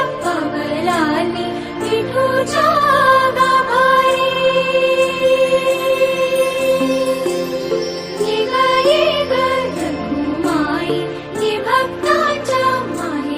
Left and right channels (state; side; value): identical; both; correlation 1.00